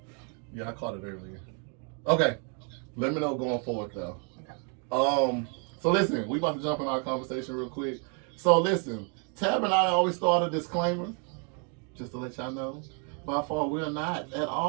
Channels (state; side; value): quieter; left; 39.0 dB